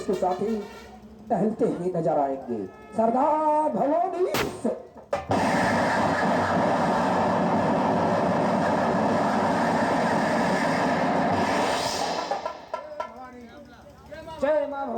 साथी टहलते हुए नजर आएंगे। सरदार भवानी सिंह। जय मां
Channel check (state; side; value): identical; both; correlation 1.00